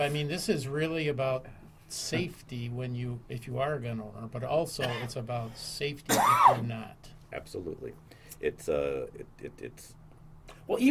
is really about safety if you are a gun owner, but also it's about safety if you're not. Absolutely. It's Well,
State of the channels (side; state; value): both; identical; correlation 1.00